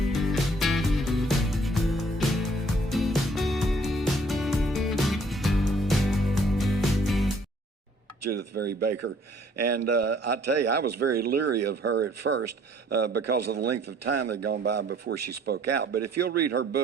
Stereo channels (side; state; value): both; normal; correlation 0.60